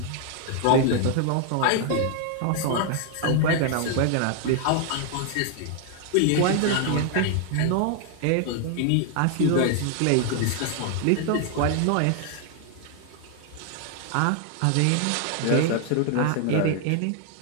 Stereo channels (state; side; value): different; both; correlation 0.00